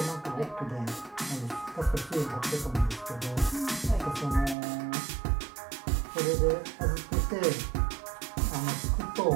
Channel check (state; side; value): drops out; left; at 4.5 s